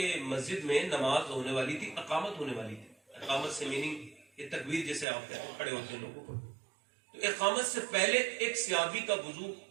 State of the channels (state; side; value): drops out; left; at 5.1 s